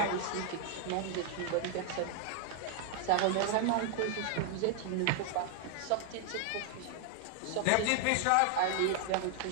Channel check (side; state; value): both; different; correlation 0.00